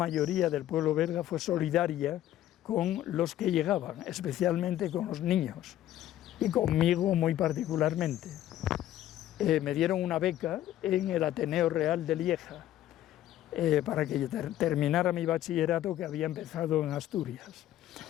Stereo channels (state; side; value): quieter; right; 12.9 dB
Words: del pueblo belga fue solidaria con los que llegaban, especialmente con los niños, y conmigo muy particularmente. Me dieron una beca en el Ateneo Real de Lieja para que terminara mi bachillerato que había empezado en Asturias.